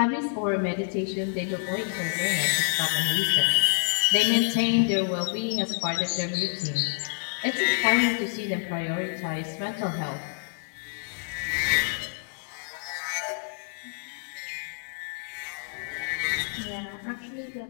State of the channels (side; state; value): right; silent; digital silence